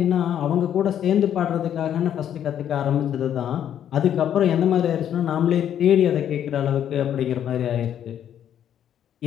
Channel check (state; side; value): quieter; right; 9.9 dB